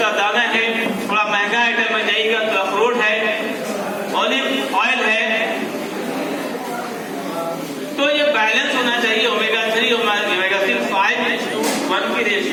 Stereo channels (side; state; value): both; identical; correlation 1.00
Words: दाना है, थोड़ा महंगा आइटम में जाइएगा तो अखरोट है, ऑलिव ऑयल है। तो ये बैलेंस होना चाहिए, ओमेगा 3 ओमेगा 5:1 की